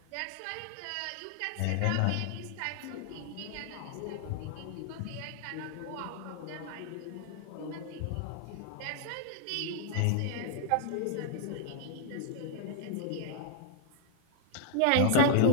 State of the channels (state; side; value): different; both; correlation 0.00